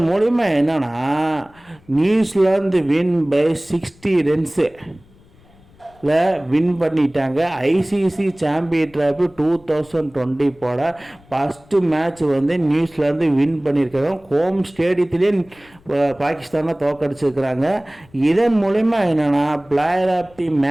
மூலிமா என்னன்னா New Zealand win by 60 runs win பண்ணிட்டாங்க. ஐசிசி சாம்பியன் டிராஃபி 2020 போட ஃபஸ்ட்டு மேட்ச் வந்து நியூசிலாந்து வின் பண்ணியிருக்காங்க. ஹோம் ஸ்டேடியத்திலே பாகிஸ்தானை தோக்கடிச்சிருக்கிறாங்க. இதன் மூலிமா என்னென்னா பிளேயர் ஆஃப் தி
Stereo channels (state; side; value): noise; left; rumble, 28 dB below the sound